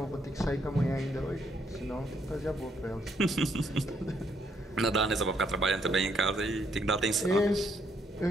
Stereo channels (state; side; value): normal; both; correlation 0.72